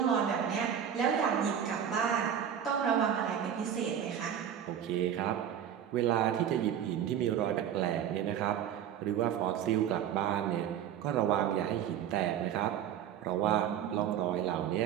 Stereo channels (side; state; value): left; quieter; 9.3 dB